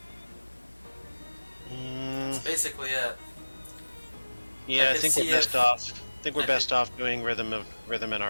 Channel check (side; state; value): both; inverted; correlation -1.00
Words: That's basically it. Yeah, I could think see we're best if- off. I think we're I best off doing rhythm in